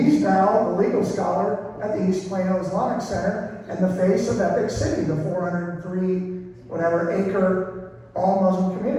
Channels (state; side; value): identical; both; correlation 1.00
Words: now the legal scholar at the East Plano Islamic Center and the face of Epic City, the 403 acre all Muslim